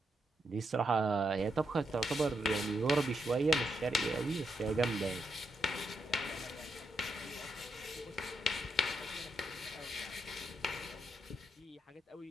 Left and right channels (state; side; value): normal; both; correlation 0.81